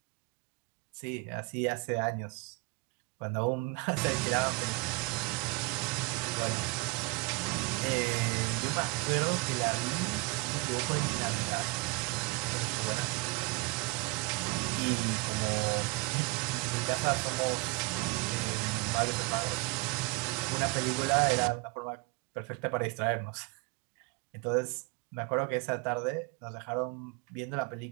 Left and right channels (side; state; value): left; quieter; 26.3 dB